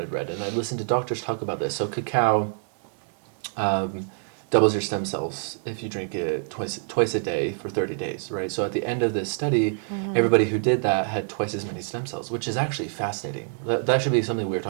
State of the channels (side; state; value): left; silent; 61 dB below the other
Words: read. And I listened to doctors talk about this. So cacao doubles your stem cells if you drink it twice a day for 30 days, right? So at the end of this study, everybody who did that had twice as many stem cells, which is actually fascinating. That should be something we're